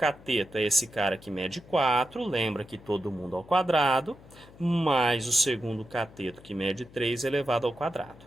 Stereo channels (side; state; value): left; noise; hum, 22 dB below the sound